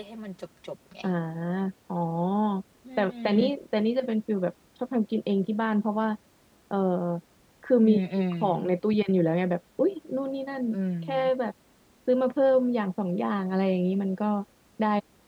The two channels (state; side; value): identical; both; correlation 1.00